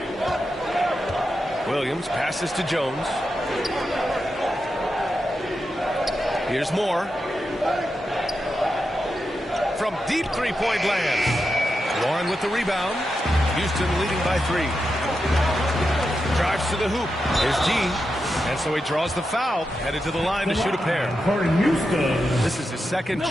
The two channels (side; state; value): both; normal; correlation 0.88